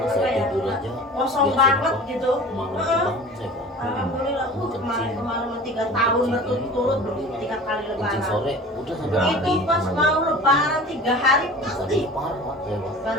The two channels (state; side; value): normal; both; correlation 0.40